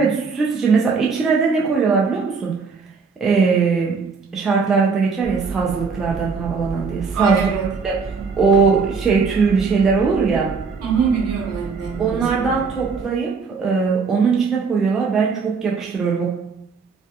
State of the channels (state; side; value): quieter; left; 5.0 dB